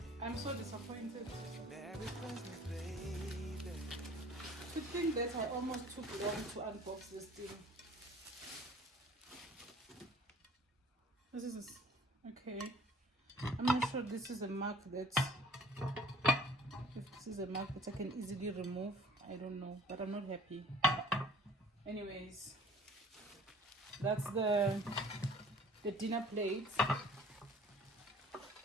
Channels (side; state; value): both; normal; correlation 0.51